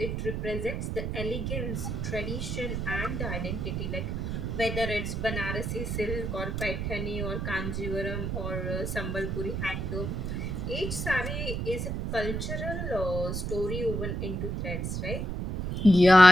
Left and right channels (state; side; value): noise; right; rumble, 2 dB below the sound